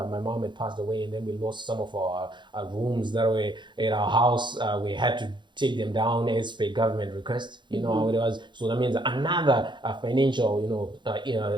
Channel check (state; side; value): late; left; 0.23 ms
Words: my mom had passed away, and then we lost some of our rooms that were in our house. We had to take them down as per government request. You know how it was. So that means another financial,